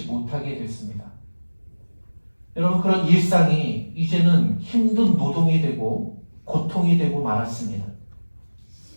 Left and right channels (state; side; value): inverted; both; correlation -1.00